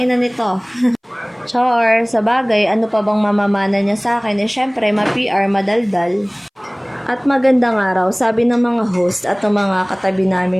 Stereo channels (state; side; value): identical; both; correlation 1.00